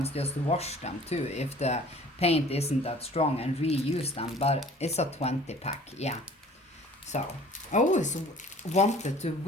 just wash them too if the paint isn't that strong, and reuse them. But it's a 20-pack, yeah. So I always wanted to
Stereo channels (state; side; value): normal; both; correlation 0.49